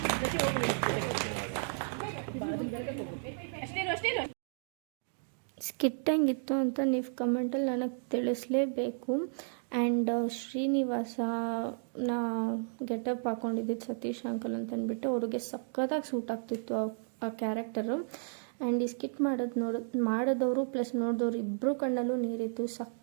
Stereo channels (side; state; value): left; silent; digital silence